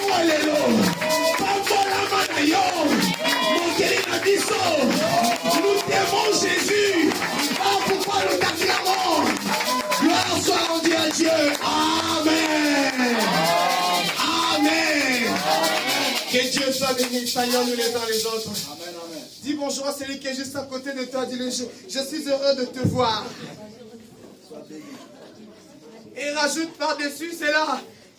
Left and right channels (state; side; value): identical; both; correlation 1.00